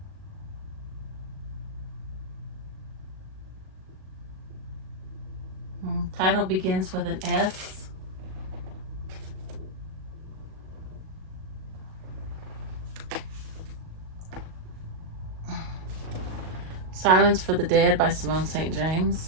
Title begins with an S. Silence for the Dead by Simone St.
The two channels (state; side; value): late; left; 38 ms